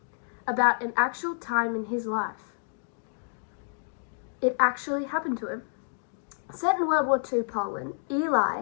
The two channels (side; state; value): right; silent; digital silence